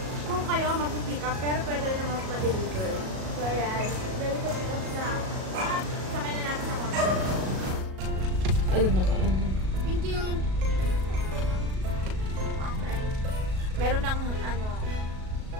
Kung kayo magpipick up, pero pwede rin naman pa-deliver. So, ayan. Dahil ko pick up na. Sakay na natin sa kotse. Alam na ka. Thank you. Okay. Meron ng,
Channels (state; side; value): late; left; 37 ms